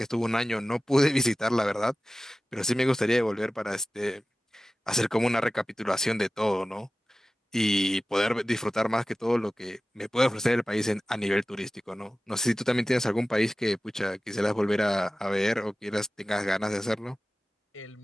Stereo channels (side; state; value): both; normal; correlation 0.96